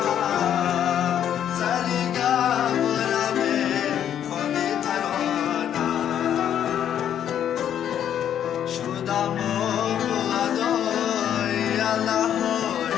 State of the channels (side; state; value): right; quieter; 9.8 dB